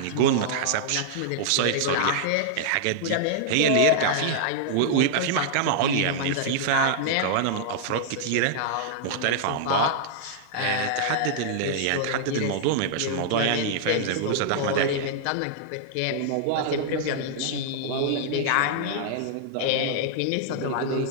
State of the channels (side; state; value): both; different; correlation -0.01